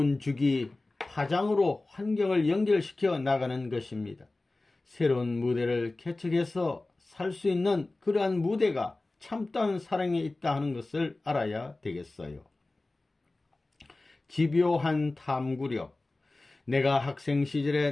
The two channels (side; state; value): right; quieter; 3.0 dB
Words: 주기, 파장으로 환경을 연결시켜 나가는 것입니다. 새로운 무대를 개척해서 살 수 있는 그러한 무대가 참다운 사랑에 있다 하는 것을 알아야 되겠어요. 집요한 탐구력. 내가 학생 시절에